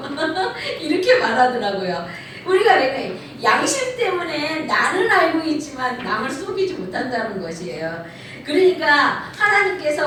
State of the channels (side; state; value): both; identical; correlation 1.00